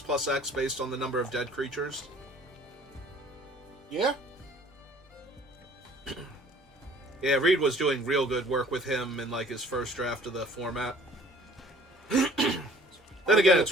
based on the number of dead creatures. Yeah? Yeah, Reed was doing real good work with him in, like, his first draft of the format. Then again, it's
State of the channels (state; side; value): normal; both; correlation 0.53